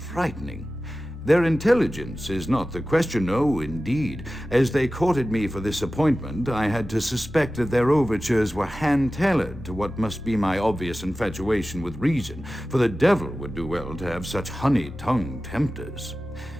Their intelligence is not the question, no, indeed. As they courted me for this appointment, I had to suspect that their overtures were hand-tailored to what must be my obvious infatuation with reason, for the devil would do well to have such honey-tongued tempters.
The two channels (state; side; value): normal; both; correlation 0.95